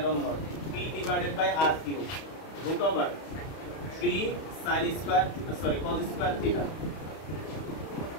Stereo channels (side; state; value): right; late; 31 ms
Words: naught p divided by r cube √3 sin square sorry cos square theta